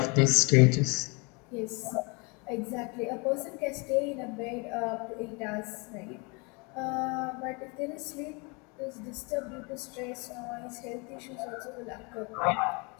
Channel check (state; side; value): quieter; right; 30.6 dB